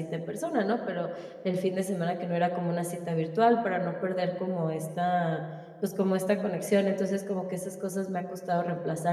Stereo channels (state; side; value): identical; both; correlation 1.00